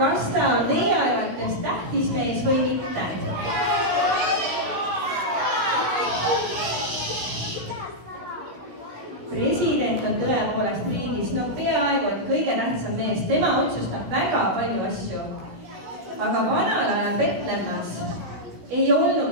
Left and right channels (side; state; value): left; late; 16 ms